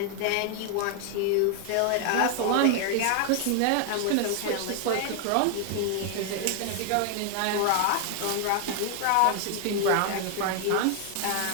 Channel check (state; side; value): different; both; correlation 0.00